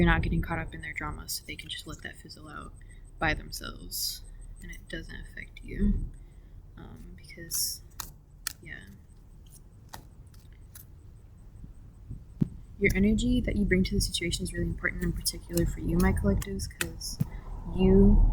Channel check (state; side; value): identical; both; correlation 1.00